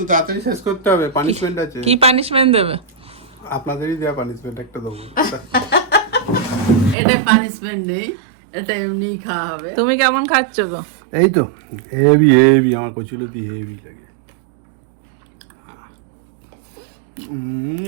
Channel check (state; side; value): drops out; left; at 7.0 s